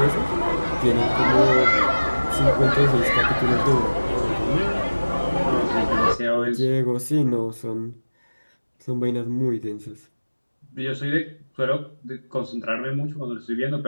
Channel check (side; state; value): both; inverted; correlation -1.00